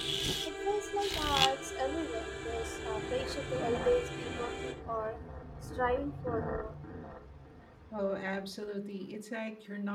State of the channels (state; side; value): identical; both; correlation 1.00